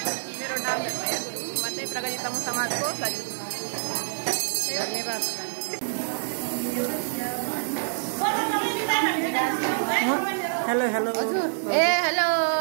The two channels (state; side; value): silent; left; 60 dB below the other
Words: मेरो नाम धर्मया गुरुङ, म चाहिँ प्रगति तमु समाजको धन्यवाद। हेलो हेलो हेलो